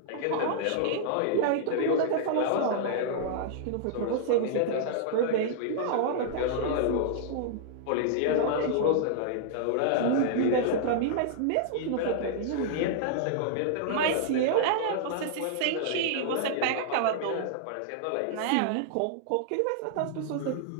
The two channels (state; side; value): different; both; correlation -0.01